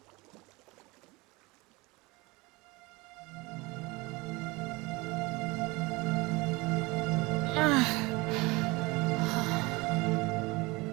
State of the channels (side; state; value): left; quieter; 23.8 dB